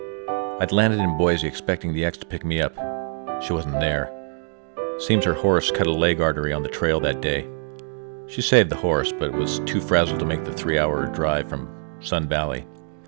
I'd landed in Boise expecting the ex to pick me up. She wasn't there. Seems her horse cut a leg artery on the trail that day. She saved the horse, but was too frazzled to make the 3-hour drive from Sun Valley.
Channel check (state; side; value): silent; left; 63 dB below the other